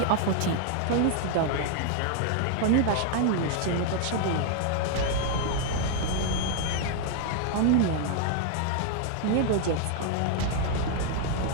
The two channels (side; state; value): both; different; correlation 0.00